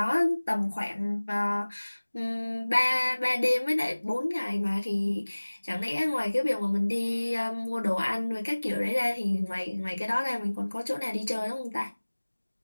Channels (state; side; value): inverted; both; correlation -1.00